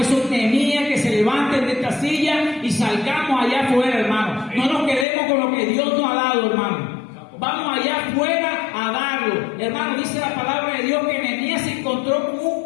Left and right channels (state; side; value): drops out; right; at 5.1 s